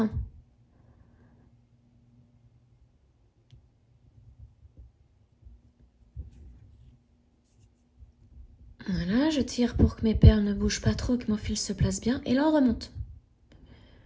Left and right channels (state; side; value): identical; both; correlation 1.00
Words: Voilà, je tire pour que mes perles ne bougent pas trop, que mon fil se place bien. Et là, on remonte.